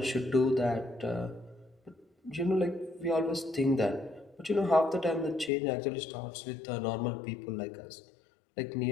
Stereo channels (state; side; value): drops out; right; at 5.5 s